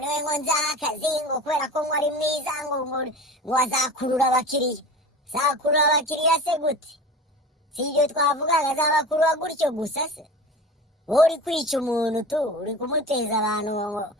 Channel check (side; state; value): both; normal; correlation 0.34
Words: ngo nzaha akazi ngo kubera ko ngo ari mwiza ngo azakurura abakiriya zakurura abakiriya se gute si ibyo twavugaga azabakurura gutyo gusa se wowe uri kwica umuntu uri kumuteza abantu